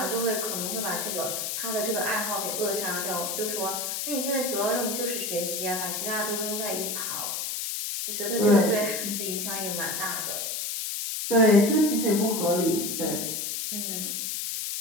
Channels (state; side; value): noise; left; hiss, 2 dB below the sound